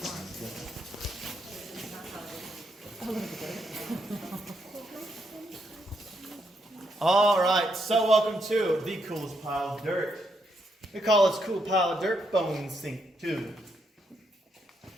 All right, so welcome to the coolest pile of dirt. We call this cool pile of dirt Bone Sink 2.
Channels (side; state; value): both; normal; correlation 0.78